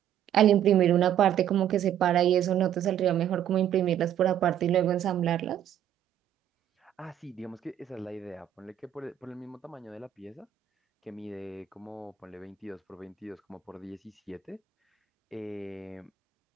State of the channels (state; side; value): quieter; left; 10.4 dB